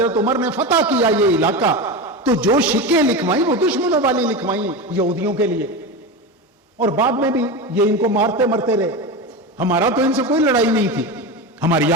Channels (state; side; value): normal; both; correlation 0.21